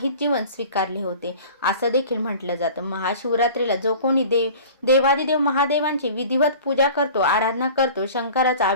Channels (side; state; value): both; inverted; correlation -0.42